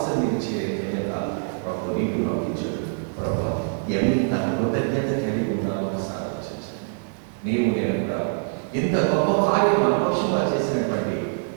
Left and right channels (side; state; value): left; silent; 62 dB below the other